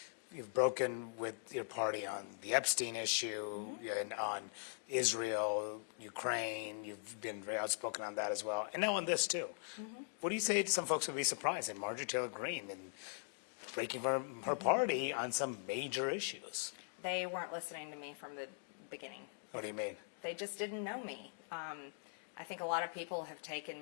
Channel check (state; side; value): silent; right; digital silence